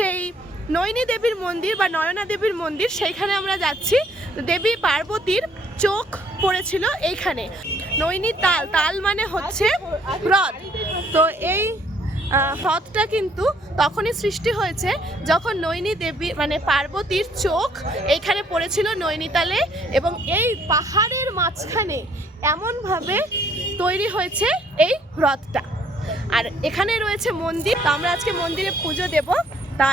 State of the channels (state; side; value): normal; both; correlation 0.64